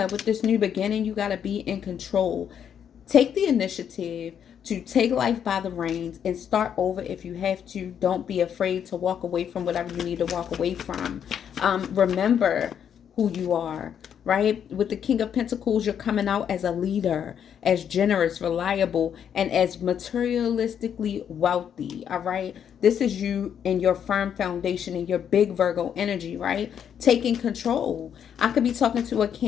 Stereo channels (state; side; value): quieter; right; 8.6 dB